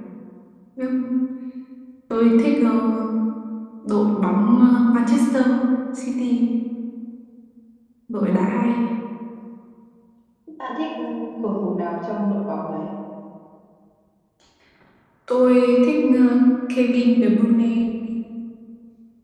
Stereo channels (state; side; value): identical; both; correlation 1.00